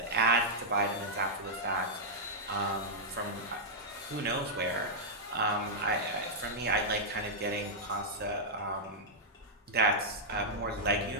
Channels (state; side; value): normal; both; correlation -0.08